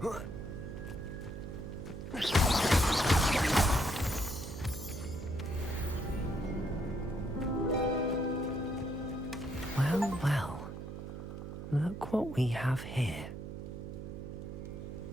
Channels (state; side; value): noise; right; hum, 8 dB below the sound